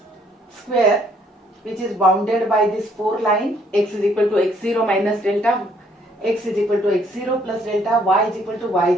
which is bounded by this 4 line. X is equal to x0 minus delta, x is equal to x0 plus delta, y is equal to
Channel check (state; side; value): normal; both; correlation 0.65